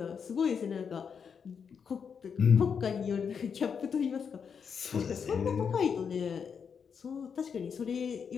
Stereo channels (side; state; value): right; quieter; 6.6 dB